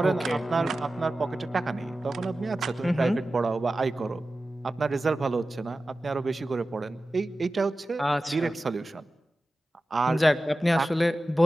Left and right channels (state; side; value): normal; both; correlation 0.94